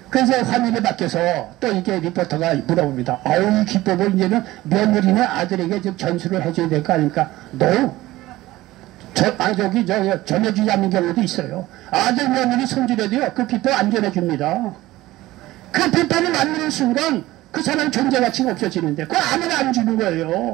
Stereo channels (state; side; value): quieter; left; 17.3 dB